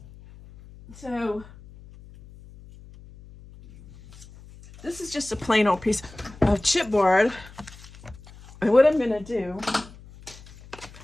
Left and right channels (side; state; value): left; noise; hum, 20 dB below the sound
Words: So this is just a plain old piece of chipboard. And what I'm gonna do,